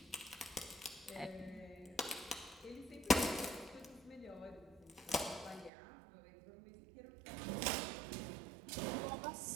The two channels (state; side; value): drops out; left; at 5.7 s